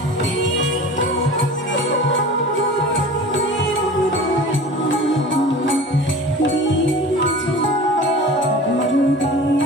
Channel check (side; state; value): both; normal; correlation 0.38